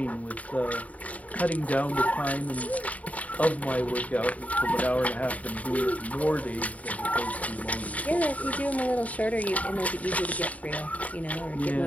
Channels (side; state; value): right; late; 0.070 ms